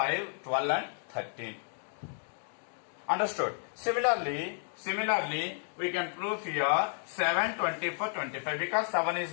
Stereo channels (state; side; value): silent; right; 56 dB below the other